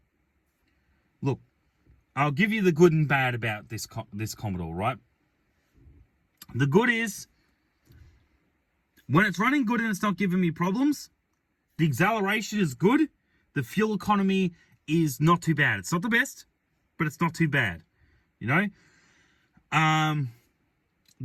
look, I'll give you the good and bad about this Commodore, right? The good is, when it's running good and it's not giving me problems, the acceleration is good, the fuel economy is not too bad. It's not the best, but it's not too bad, you know?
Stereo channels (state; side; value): identical; both; correlation 1.00